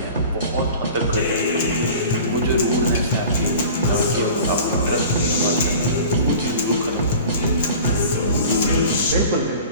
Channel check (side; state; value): both; inverted; correlation -0.40